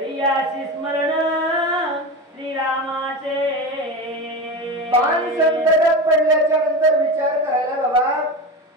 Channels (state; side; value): normal; both; correlation 0.24